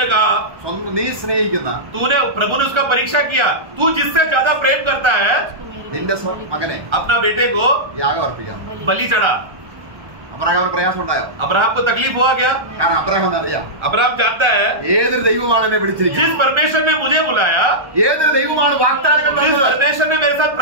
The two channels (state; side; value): late; left; 1.3 ms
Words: कहा നീ സ്നേഹിക്കുന്ന प्रभु ने उसका परीक्षा किया, तू जिससे ज्यादा प्रेम करता है നിന്റെ മകനെ अपना बेटे को യാഗം അർപ്പിക്കാം. बलि चढ़ा। അബ്രഹാമിന് പ്രയാസം ഉണ്ടായോ? अब्राहम को तकलीफ हुआ क्या? കാരണം അബ്രഹാമിന് അറിയാം अब्राहम जानता है ഏതൊരു ദൈവമാണ് എന്നെ വിളിച്ചിരിക്കുന്നത്, जिस परमेश्वर ने मुझे बुलाया, ഏതൊരു ദൈവമാണ് വാഗ്ദാനങ്ങൾ जिस തന്നത്. परमेश्वर ने मेरे साथ